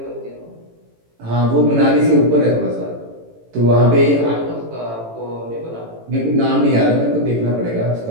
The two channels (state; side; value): late; left; 18 ms